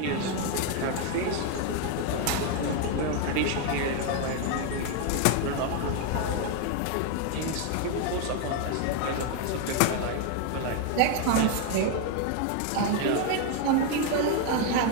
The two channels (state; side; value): different; both; correlation 0.01